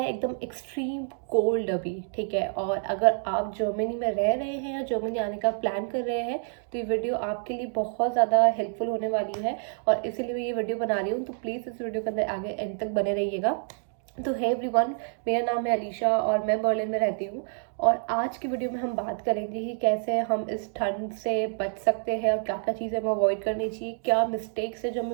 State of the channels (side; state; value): left; silent; 60 dB below the other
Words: एकदम एक्सट्रीम कोल्ड अभी, ठीक है। और अगर आप जर्मनी में रह रहे हैं या जर्मनी आने का प्लान कर रहे हैं तो ये वीडियो आपके लिए बहुत ज़्यादा हेल्पफुल होने वाली है और इसीलिए मैं ये वीडियो बना रही हूँ। तो प्लीज़ इस वीडियो के अंदर आगे एंड तक बने रहिएगा। तो है एवरीवन, मेरा नाम है अलीशा और मैं बर्लिन में रहती हूँ। और आज की वीडियो में हम बात करेंगे कि कैसे हम इस ठंड से बच सकते हैं और क्या क्या चीज़ें हमें अवॉइड करनी चाहिए, क्या मिस्टेक्स है जो